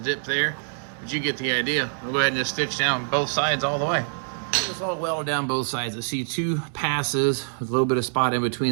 there, but you get the idea. I'll go ahead and just stitch down both sides all the way. Just all weld down both sides. I see two passes with a little bit of spot in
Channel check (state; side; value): silent; left; digital silence